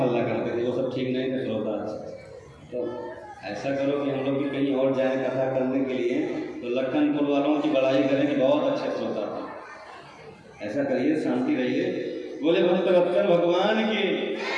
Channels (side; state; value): both; identical; correlation 1.00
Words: करते थे, वो सब ठीक नहीं थे श्रोता। तो ऐसा करो कि हम लोग भी कहीं और जाएं कथा करने के लिए, तो लखनपुर वालों की बड़ाई करें कि बहुत अच्छे श्रोता थे। ऐसा करिए, शांति रहिए। बोले भक्त वत्सल भगवान की,